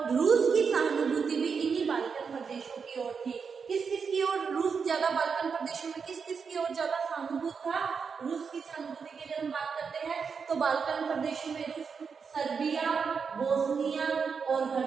रूस की सहानुभूति भी इन्हीं बाल्कन प्रदेशों की ओर थी। किस किस की ओर रूस ज्यादा, बाल्कन प्रदेशों में किस किस की ओर ज्यादा सहानुभूत था? रूस की सहानुभूति की अगर हम बात करते हैं तो बाल्कन प्रदेशों में रूस सर्बिया, बोस्निया और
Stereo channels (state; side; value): quieter; left; 5.8 dB